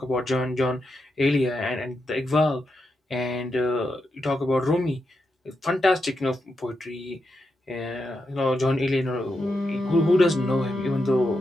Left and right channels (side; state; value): both; normal; correlation 0.85